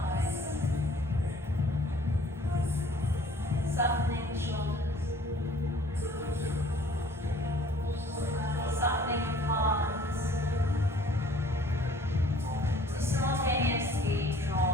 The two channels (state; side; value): normal; both; correlation 0.54